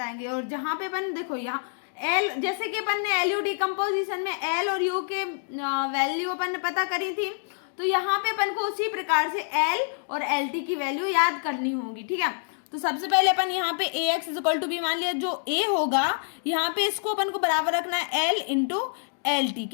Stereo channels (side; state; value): right; silent; digital silence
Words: और जहाँ पे अपन देखो यहाँ एल, जैसे कि अपन ने एलयू डिकम्पोजिशन में एल और यू के वैल्यू अपन ने पता करी थी, तो यहाँ पे अपन को उसी प्रकार से एल और एल टी की वैल्यू याद करनी होगी। ठीक है, तो सबसे पहले अपन यहाँ पे A X is equal to B मान लिया। जो ए होगा यहाँ पे इसको अपन को बराबर रखना है एल इंटू एल टी